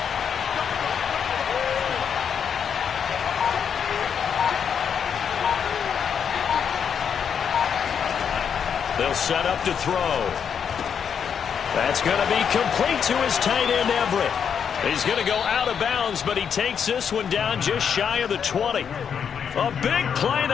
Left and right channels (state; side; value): quieter; right; 7.4 dB